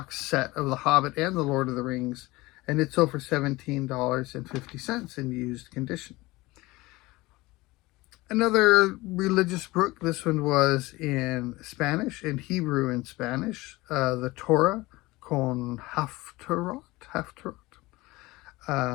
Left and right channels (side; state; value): right; quieter; 20.7 dB